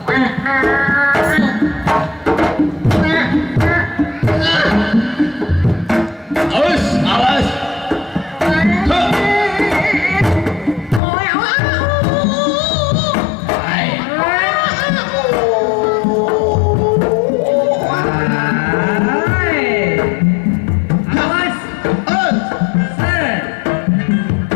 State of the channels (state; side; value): drops out; right; at 11.0 s